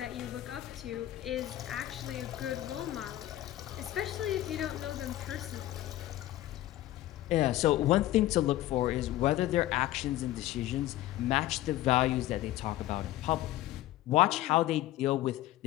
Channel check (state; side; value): quieter; right; 14.9 dB